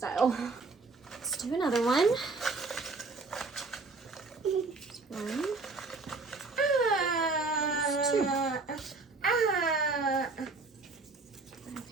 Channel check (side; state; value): left; quieter; 3.9 dB